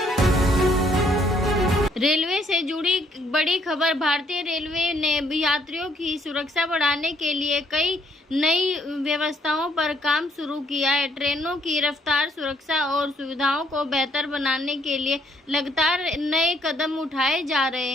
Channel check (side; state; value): both; normal; correlation 0.68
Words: रेलवे से जुड़ी बड़ी खबर। भारतीय रेलवे ने यात्रियों की सुरक्षा बढ़ाने के लिए कई नई व्यवस्थाओं पर काम शुरू किया है। ट्रेनों की रफ्तार, सुरक्षा और सुविधाओं को बेहतर बनाने के लिए लगातार नए कदम उठाए जा रहे